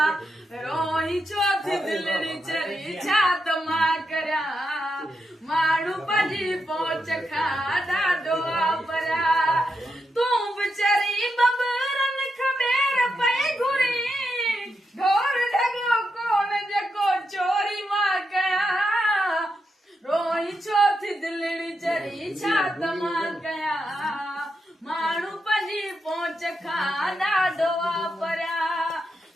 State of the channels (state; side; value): normal; both; correlation 0.85